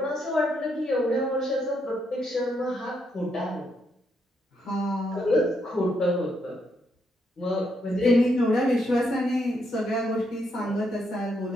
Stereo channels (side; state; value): both; normal; correlation 0.77